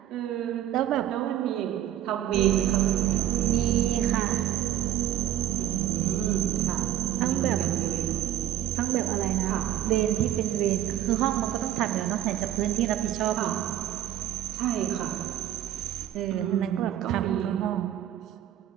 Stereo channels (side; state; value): left; quieter; 11.7 dB